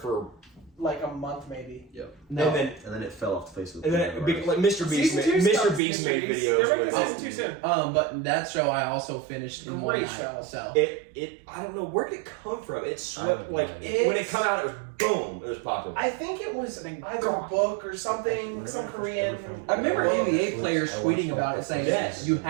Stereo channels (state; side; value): drops out; left; at 5.8 s